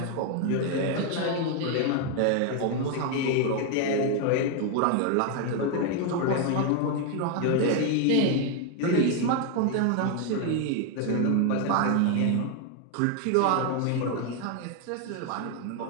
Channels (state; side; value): different; both; correlation 0.01